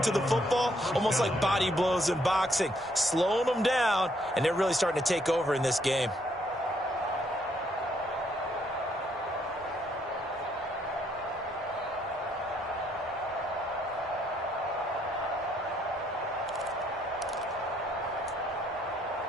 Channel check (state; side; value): normal; both; correlation 0.70